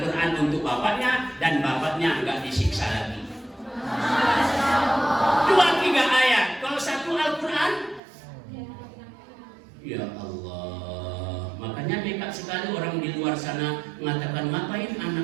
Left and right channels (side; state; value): left; drops out; at 8.0 s